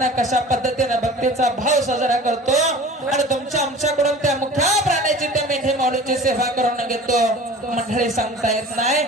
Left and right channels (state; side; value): normal; both; correlation 0.41